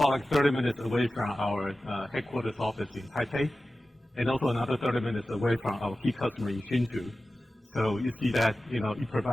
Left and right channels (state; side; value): normal; both; correlation 0.95